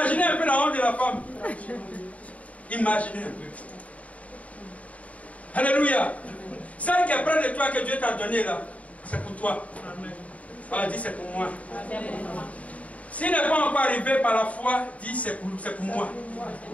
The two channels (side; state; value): right; late; 0.068 ms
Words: un peu la honte de la femme. Imaginez un peu. Alléluia. Celle qui est près de toi que Dieu t'a donné là, c'est pour toi. Alors dis c'est pour moi. S'il n'est pas encore arrivé par la foi, dis c'est pour moi.